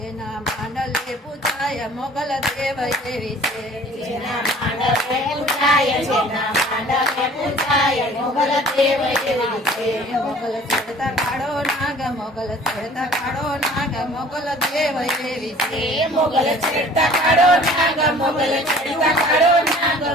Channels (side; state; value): both; normal; correlation 0.50